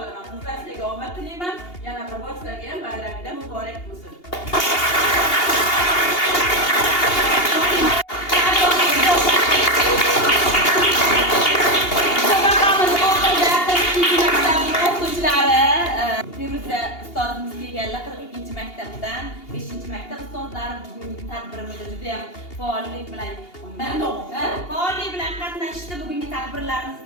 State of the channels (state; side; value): late; right; 2.8 ms